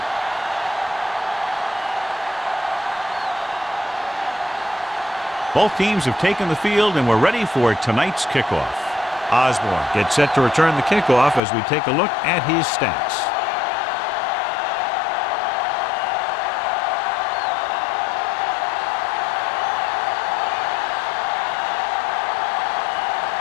Both teams have taken the field, and we're ready for tonight's kickoff. Osborne gets set to return the kickoff as we take a look at his stats.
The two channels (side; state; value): right; drops out; at 11.4 s